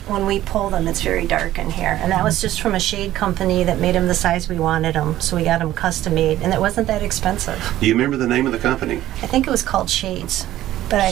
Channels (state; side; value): quieter; left; 14.0 dB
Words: when we pull them, it's very dark in here. And that was just from a shade company that made them the size we wanted them. So we got them custom made, and it wasn't that expensive. Do you remember the name of the company? I think it was called Shades. But